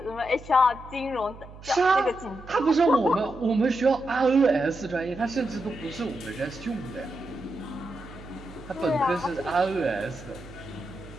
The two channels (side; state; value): right; noise; hum, 17 dB below the sound